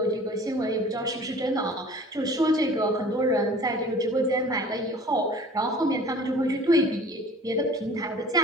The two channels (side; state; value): both; normal; correlation 0.46